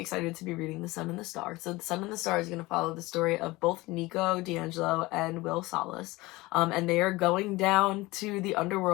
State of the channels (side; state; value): right; quieter; 20.8 dB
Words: to be reading The Sun and the Star. So The Sun and the Star is going to follow the story of both Nico Di Angelo and Will Solace. And they are going down to the